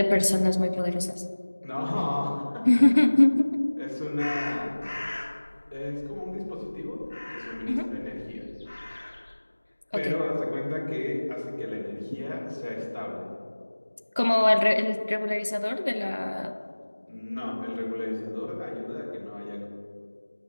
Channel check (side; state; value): both; inverted; correlation -1.00